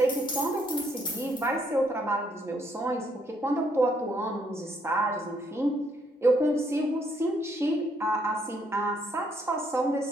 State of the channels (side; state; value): both; normal; correlation 0.71